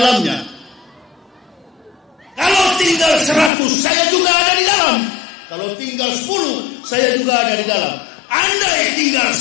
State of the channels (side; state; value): right; drops out; at 3.5 s